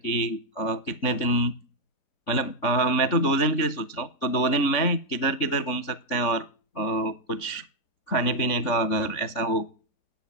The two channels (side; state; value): right; late; 3.5 ms